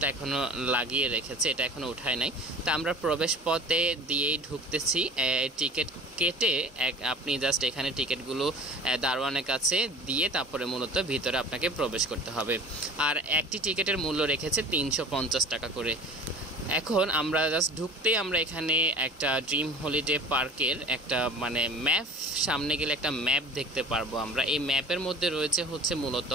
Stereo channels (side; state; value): both; normal; correlation 0.42